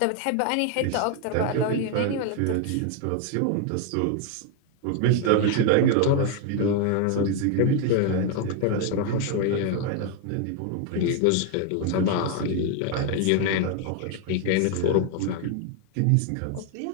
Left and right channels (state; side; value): different; both; correlation 0.01